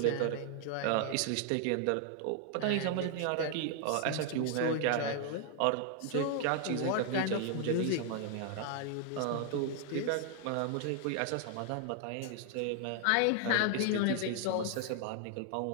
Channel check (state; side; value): different; both; correlation 0.00